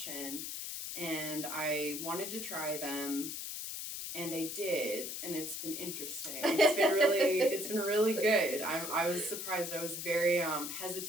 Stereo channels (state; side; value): noise; left; hiss, 6 dB below the sound